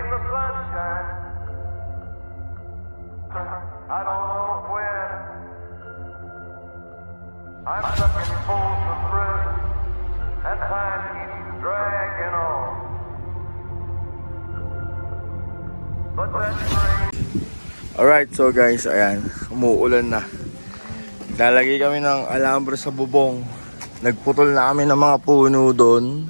the sunshine. I don't know when. I'm stuck in Folsom Prison, and time keeps dragging on. But that train... Alright, so guys, ayan, umuulan na. Lalagay kami ng alambre sa bubong. Nagputol na kami ng mga puno doon.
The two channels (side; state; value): both; inverted; correlation -1.00